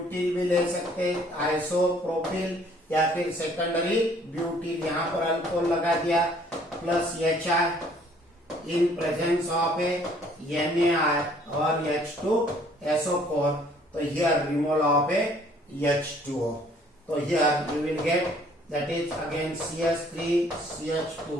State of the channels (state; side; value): normal; both; correlation 0.59